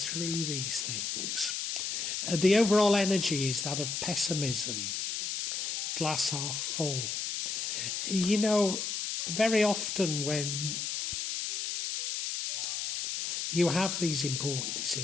these things. The overall energy is that of pessimism, glass half full. You know, very often when you have these important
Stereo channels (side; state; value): left; noise; hiss, 2 dB below the sound